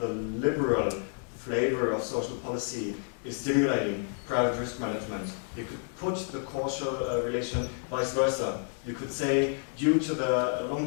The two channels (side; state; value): right; silent; 58 dB below the other